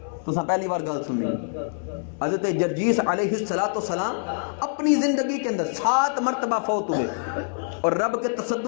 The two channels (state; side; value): silent; right; 62 dB below the other